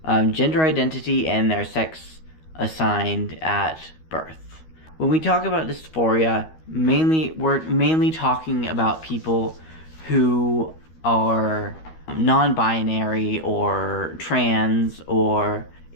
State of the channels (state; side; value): late; right; 13 ms